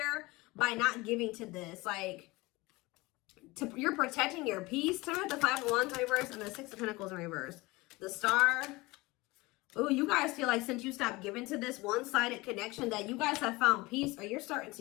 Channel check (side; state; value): right; quieter; 22.2 dB